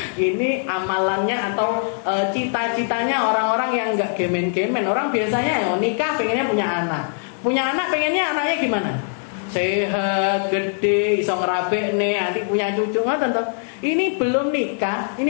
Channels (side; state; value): right; silent; 65 dB below the other